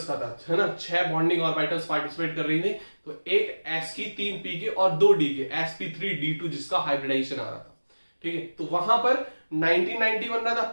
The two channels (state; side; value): inverted; both; correlation -1.00